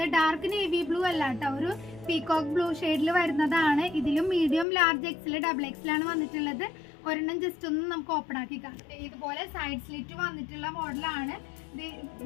ഡാർക്ക് നേവി ബ്ലൂ അല്ല കേട്ടോ, ഒരു പീകോക്ക് ബ്ലൂ ഷെയ്ഡിൽ വരുന്നതാണ്. ഇതിലും medium, large, XL, double XL ആണ് വന്നിട്ടുള്ളത്. ഒരെണ്ണം ജസ്റ്റ് ഒന്ന് നമുക്ക് ഓപ്പൺ ആക്കി കാണാം. ഇതുപോലെ സൈഡ് സ്ലിറ്റ് വന്നിട്ടുള്ള മോഡലാണ്.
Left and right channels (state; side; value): drops out; right; at 4.7 s